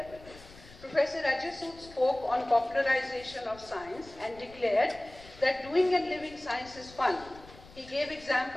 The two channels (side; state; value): left; noise; rumble, 20 dB below the sound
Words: Professor Ajay Sood spoke on popularization of science and declared that doing and living science is fun. He gave